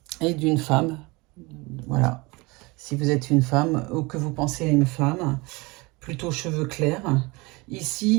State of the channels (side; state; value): left; quieter; 25.0 dB